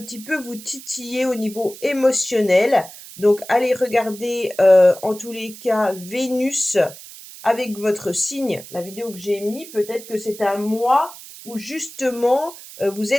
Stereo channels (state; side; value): noise; right; hiss, 16 dB below the sound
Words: petit peu vous titiller au niveau émotionnel. Donc, allez regarder en tous les cas Vénus avec votre signe, la vidéo que j'ai mis. Peut-être que c'est un mois où justement vous